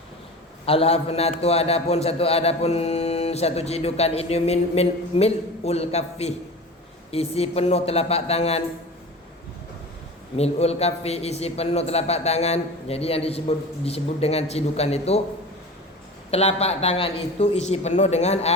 Al-hafanatu adapun satu cidukan ini mil'ul kaffi, isi penuh telapak tangan. Mil'ul kaffi, isi penuh telapak tangan. Jadi yang disebut dengan cidukan itu telapak tangan itu isi penuh dengan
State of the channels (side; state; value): both; normal; correlation 0.34